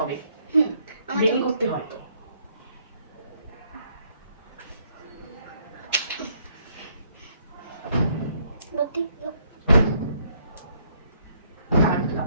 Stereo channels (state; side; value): inverted; both; correlation -0.69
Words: হবে, বেনি করতে হয় তো।